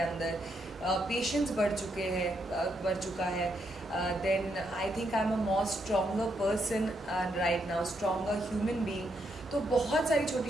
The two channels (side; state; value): both; normal; correlation 0.78